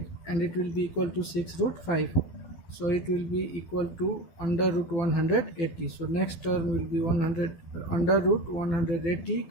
and it will be equal to 6 root 5, so it will be equal to under root 180. So next term will be 100 under root 180.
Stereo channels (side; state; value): right; late; 12 ms